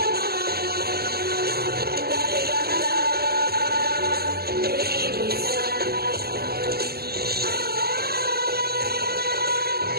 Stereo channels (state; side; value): late; left; 0.46 ms